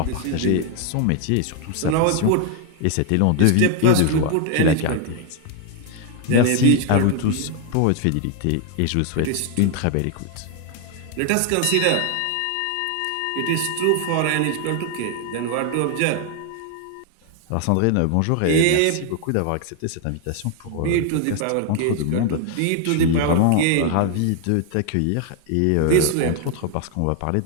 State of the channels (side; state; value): both; different; correlation 0.01